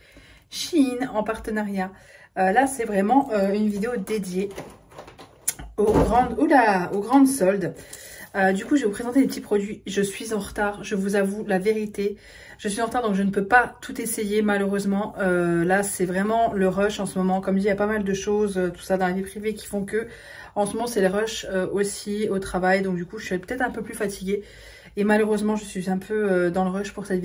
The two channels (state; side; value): identical; both; correlation 1.00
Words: Shein en partenariat. Là, c'est vraiment une vidéo dédiée aux grandes soldes. Du coup, je vais vous présenter les petits produits. Je suis en retard, je vous avoue la vérité. Je suis en retard, donc je ne peux pas tout essayer malheureusement. Là, c'est vraiment le rush en ce moment. Comme dit, il y a pas mal de choses, tout ça dans la vie privée qui font que... En ce moment, c'est le rush aussi au travail. Donc du coup, je suis peut-être un peu plus fatiguée. Et malheureusement, je suis un peu dans le rush pour cette